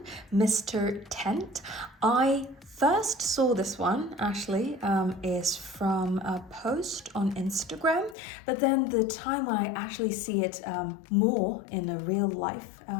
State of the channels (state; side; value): drops out; right; at 8.2 s